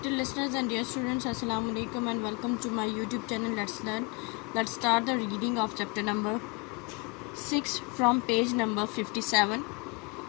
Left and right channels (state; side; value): quieter; right; 28.7 dB